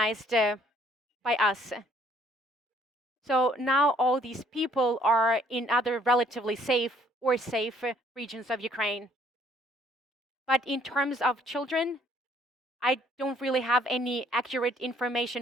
by us. So now all these people are in other relatively safe or safe regions of Ukraine. But in terms of children, I don't really have any accurate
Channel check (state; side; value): normal; both; correlation 0.63